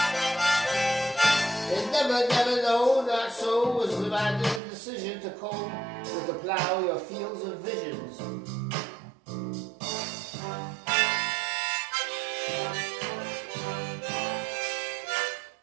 It never, no, not so, was the decision to comb with the plow your fields of visions.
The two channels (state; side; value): drops out; left; at 4.6 s